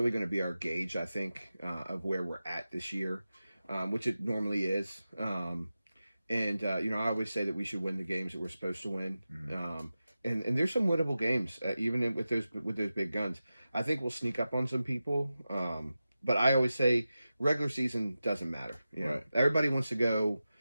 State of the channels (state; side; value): inverted; both; correlation -0.93